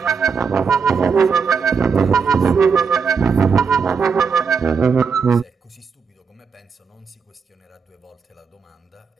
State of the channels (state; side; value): quieter; left; 5.7 dB